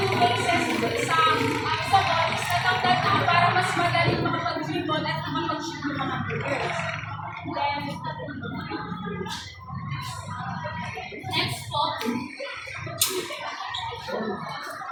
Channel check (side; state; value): both; identical; correlation 1.00